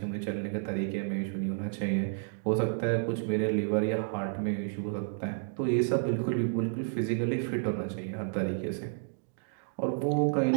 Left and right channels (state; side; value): silent; left; digital silence